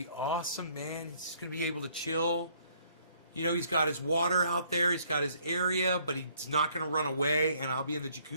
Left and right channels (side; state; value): both; inverted; correlation -0.64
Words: awesome, man. He's gonna be able to chill. You know, he's got his water out there. He's got his area, but he's not gonna run away. And I'll be in the